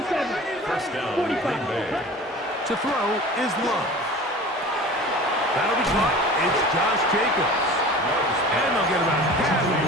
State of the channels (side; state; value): both; normal; correlation 0.39